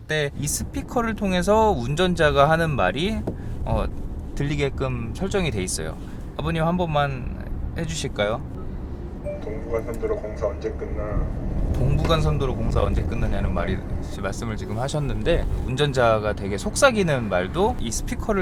이 스피커를 통해서 운전자가 하는 말이 들리게끔 설정이 돼 있어요. 아버님 한 번만 해주실까요? 동부간선도로 공사 언제 끝나? 동부간선도로 공사 언제 끝나냐는 말씀을 지금 하셨는데, 운전자가 되게 속삭이는 말도 이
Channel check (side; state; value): both; identical; correlation 1.00